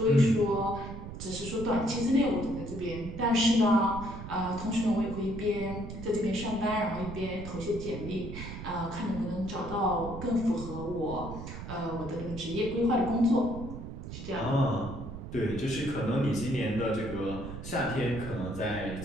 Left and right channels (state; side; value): noise; right; rumble, 9 dB below the sound